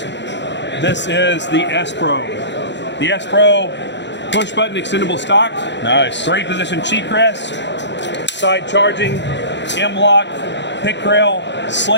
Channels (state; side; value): late; right; 0.52 ms